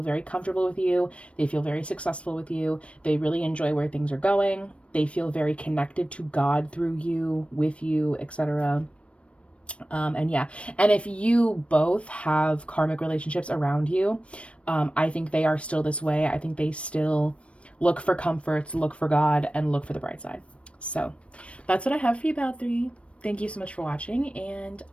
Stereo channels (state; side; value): late; right; 0.061 ms